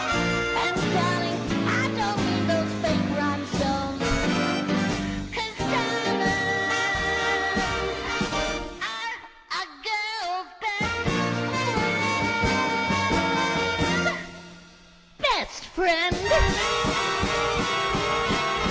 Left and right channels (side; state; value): both; identical; correlation 1.00